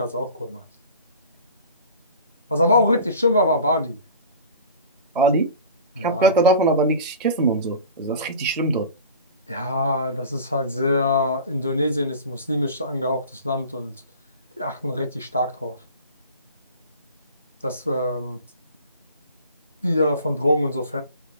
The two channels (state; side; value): inverted; both; correlation -0.39